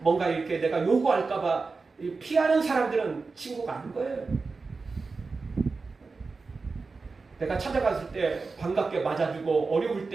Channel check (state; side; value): quieter; left; 4.2 dB